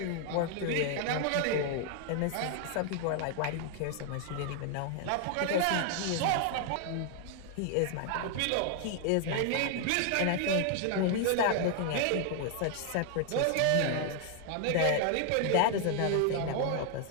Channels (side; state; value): both; different; correlation 0.00